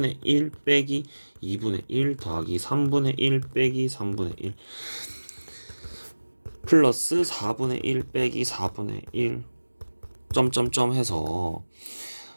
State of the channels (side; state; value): both; inverted; correlation -1.00